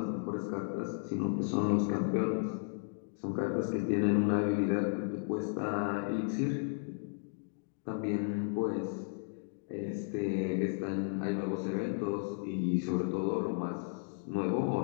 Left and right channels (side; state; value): right; silent; digital silence